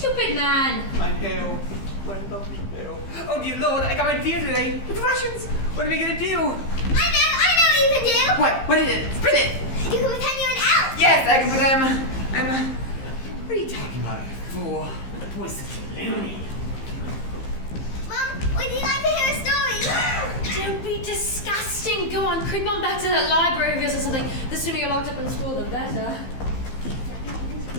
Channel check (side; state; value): right; late; 15 ms